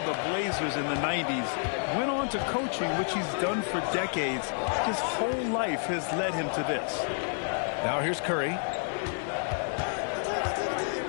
the Blazers in the 90s, went on to coaching, which he's done for decades. His whole life has led him to this. Now here's Curry.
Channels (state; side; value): silent; right; 58 dB below the other